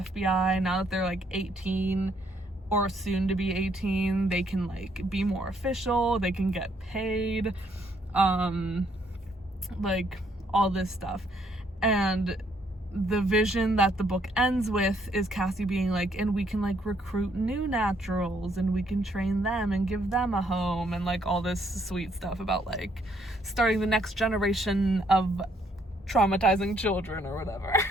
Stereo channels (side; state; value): both; normal; correlation 0.69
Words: Now that they're like 18 or soon to be 18, they can like be more official, they can get paid, like all this stuff. And the vision that the book ends with is Cassie being like, and we can like recruit new naturals and we can train them and give them a home, and like all this sweet stuff about like starting the next generation of traumatizing children or whatever.